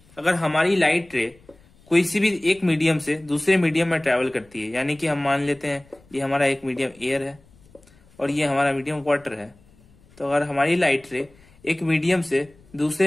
अगर हमारी लाइट रे कोई सी भी एक मीडियम से दूसरे मीडियम में ट्रेवल करती है, यानी कि हम मान लेते हैं ये हमारा एक मीडियम एयर है और ये हमारा मीडियम वाटर है। तो अगर हमारी लाइट रे एक मीडियम से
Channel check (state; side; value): noise; left; rumble, 29 dB below the sound